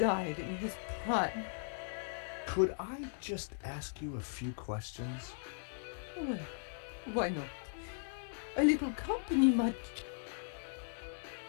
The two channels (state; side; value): silent; right; digital silence